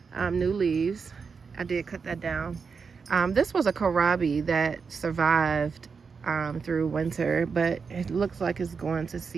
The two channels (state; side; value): quieter; left; 5.5 dB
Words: new leaves. I did cut that down. This was a kohlrabi that survived through winter, but it looks like it's going to